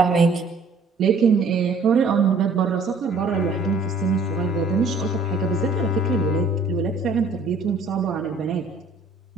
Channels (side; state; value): left; quieter; 3.6 dB